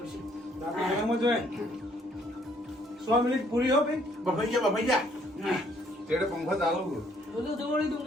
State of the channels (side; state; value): both; normal; correlation 0.65